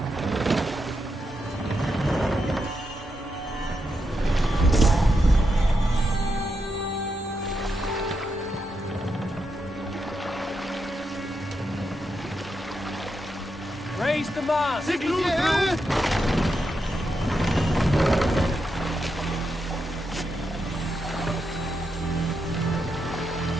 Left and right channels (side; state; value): both; normal; correlation 0.84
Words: Raise the mast!